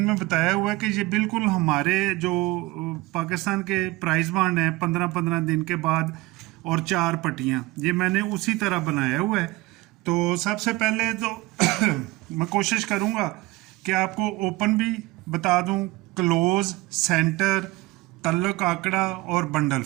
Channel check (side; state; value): left; quieter; 20.4 dB